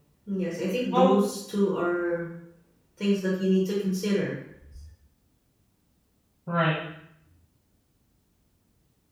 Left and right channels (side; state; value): both; identical; correlation 1.00